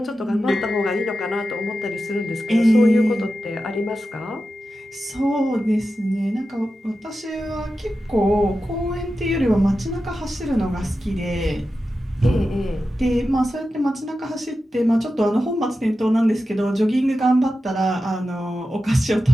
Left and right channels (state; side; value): normal; both; correlation 0.92